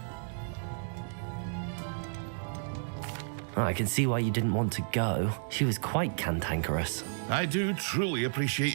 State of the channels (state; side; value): silent; left; 57 dB below the other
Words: I can see why you didn't want to go. She was quite cantankerous. I do truly appreciate